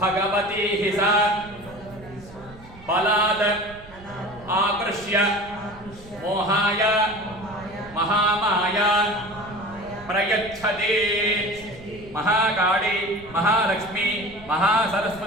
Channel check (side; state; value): right; noise; rumble, 20 dB below the sound